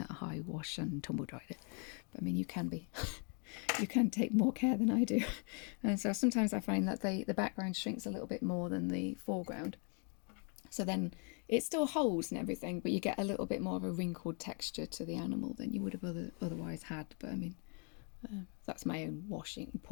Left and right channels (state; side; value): quieter; right; 39.1 dB